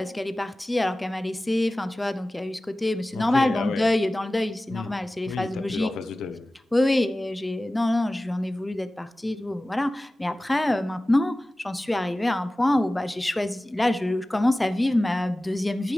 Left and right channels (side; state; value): both; normal; correlation 0.97